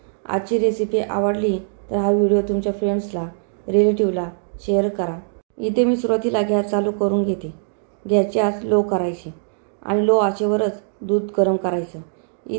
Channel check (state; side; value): silent; left; digital silence